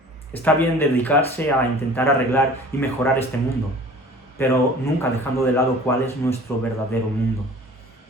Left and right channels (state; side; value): normal; both; correlation 0.45